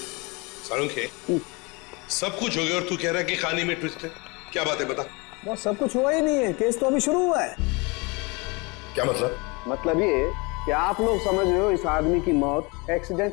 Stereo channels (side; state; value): right; quieter; 27.9 dB